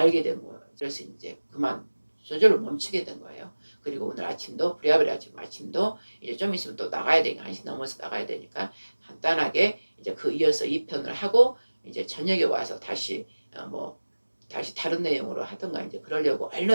된 거예요. 그래서 이제 그만 저절로 멈추게 된 거예요. 그리고 오늘 아침도 부랴부랴 지금 아침도 이제 좀 있으면 또 나가야 되니까 1시 넘어서 나가야 되니까 간단하게 이제 그 이어서 2편을 하고 이제 저녁에 와서 다시 다시 다른 내용으로 하든가 이제 그러려고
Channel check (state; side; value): inverted; both; correlation -1.00